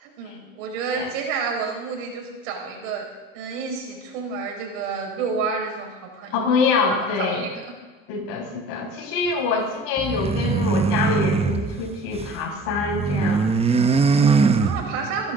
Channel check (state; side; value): normal; both; correlation 0.43